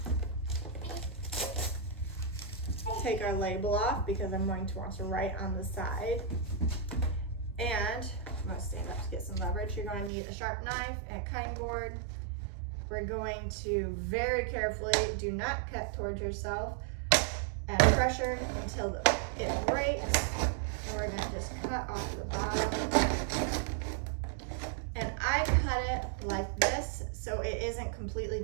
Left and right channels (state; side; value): drops out; left; at 10.1 s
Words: take our label off because I'm going to want to write on the side. And I'm going to stand up to get some leverage. You're going to need a sharp knife and a cutting board. We're going to very carefully, do not cut towards yourself, add pressure until it breaks. And we're going to just cut off the bottom. And I cut it like this so it isn't completely